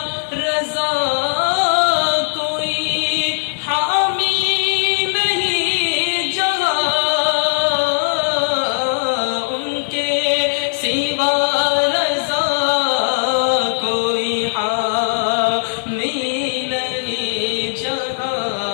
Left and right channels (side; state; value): right; silent; digital silence